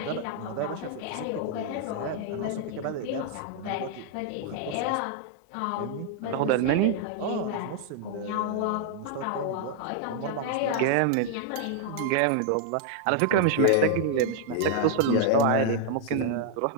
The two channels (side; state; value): both; different; correlation 0.00